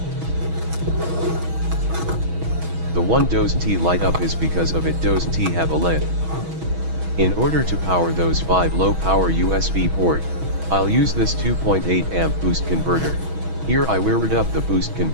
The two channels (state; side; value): late; left; 6.2 ms